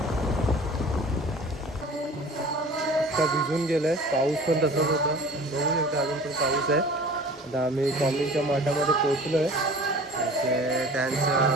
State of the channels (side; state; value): both; normal; correlation 0.44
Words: भिजून गेलंय, पाऊस पण तसंच होता, बघू शकता अजून पण पाऊस आहे. आता आम्ही स्वामींच्या मठामध्ये पोहोचलो आहे. त्यांचं